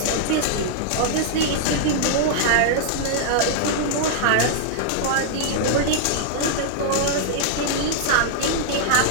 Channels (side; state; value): both; different; correlation -0.01